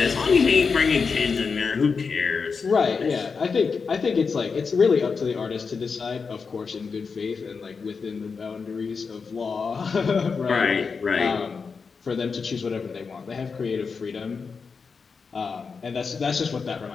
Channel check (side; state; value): right; quieter; 5.2 dB